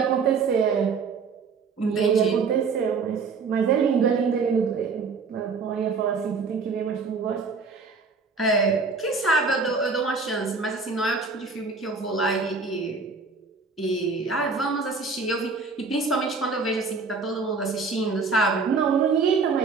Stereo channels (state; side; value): quieter; left; 4.6 dB